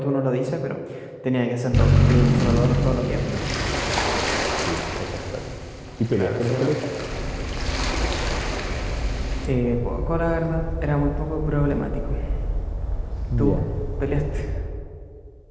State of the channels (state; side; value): identical; both; correlation 1.00